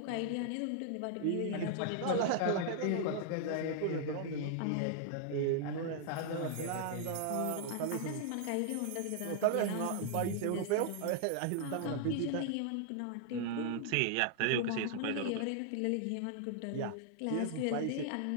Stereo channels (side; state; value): both; different; correlation 0.00